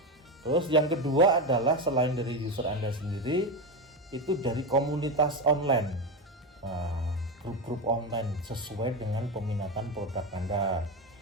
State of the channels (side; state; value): both; normal; correlation 0.14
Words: Terus yang kedua adalah selain dari user Anda sendiri, itu dari komunitas online. Nah, grup-grup online sesuai dengan peminatan produk Anda.